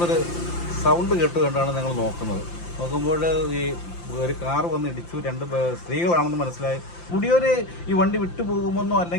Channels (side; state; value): right; late; 5.8 ms